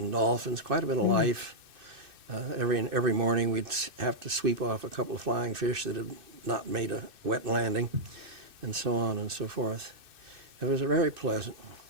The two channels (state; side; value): late; left; 2.6 ms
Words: dolphins, quite a bit of life. Every morning we'd have to sweep off a couple of flying fish that had not made a wet landing, and so on and so forth. It was very pleasant.